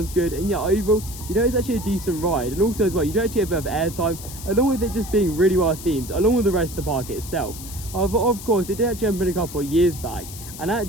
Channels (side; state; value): left; noise; hiss, 13 dB below the sound